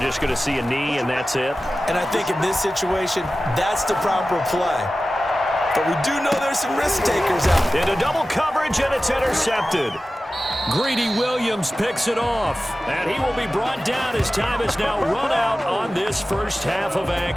going to see a knee and that's it? And I think in this situation, that's the proper play. But we do know there's some risk takers out there. Into double coverage, and it's intercepted. Greedy Williams picks it off. And he will be brought down as time is now run out on this first half of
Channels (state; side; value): normal; both; correlation 0.95